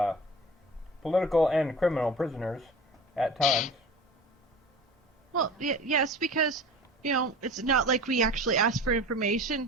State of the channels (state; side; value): normal; both; correlation 0.37